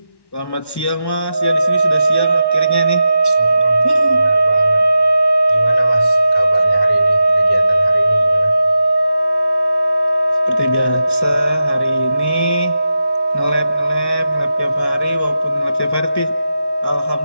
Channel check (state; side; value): late; right; 1.1 ms